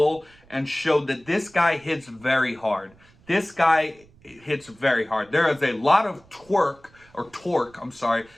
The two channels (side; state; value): right; noise; rumble, 28 dB below the sound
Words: and showed that this guy hits very hard. This guy hits very hard. There is a lot of torque,